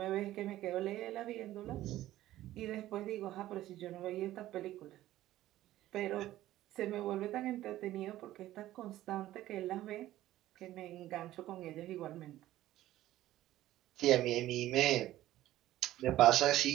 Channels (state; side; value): quieter; left; 14.6 dB